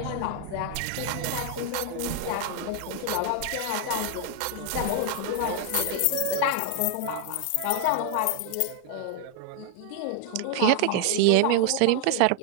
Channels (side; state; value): both; different; correlation 0.00